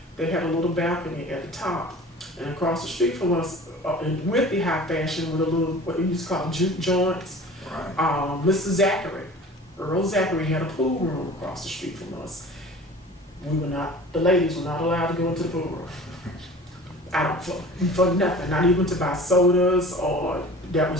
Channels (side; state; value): both; normal; correlation 0.42